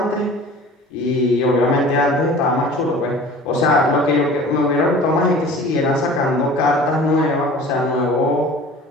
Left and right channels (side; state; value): both; normal; correlation 0.43